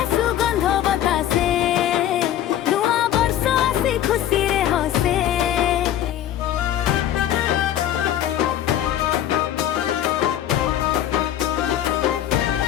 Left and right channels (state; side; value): quieter; right; 11.5 dB